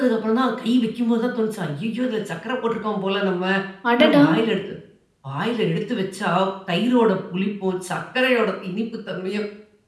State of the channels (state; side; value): identical; both; correlation 1.00